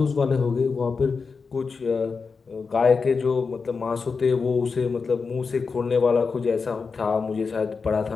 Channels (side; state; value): right; quieter; 5.0 dB